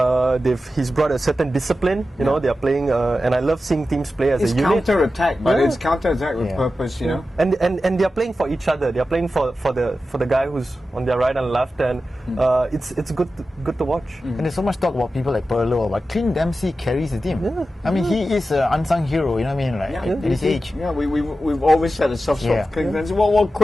He's brought a certain discipline. You know, they are playing, and I love seeing teams play as a unit. It's counter-attack, but it's counter-attack with purpose. You know, and they are playing for each other. They are playing for the guy who's on their right and left, and it's good to watch. And there's so much talk about people like Pirlo, but Clint Dempsey carries the team. I mean, he is an unsung hero. You know what I mean? Like at his age. Yeah, we've always had a soft spot for Clint Dempsey. Well,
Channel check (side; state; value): both; normal; correlation 0.92